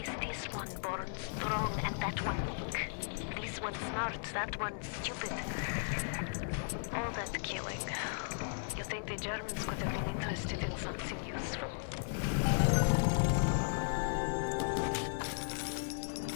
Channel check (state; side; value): silent; right; 54 dB below the other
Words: this one born strong and that one weak? This one smart, that one stupid. All that killing. You think the Germans could have been interested in something useful?